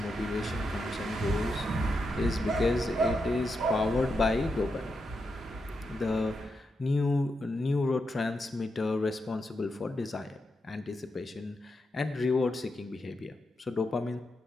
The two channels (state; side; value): normal; both; correlation 0.85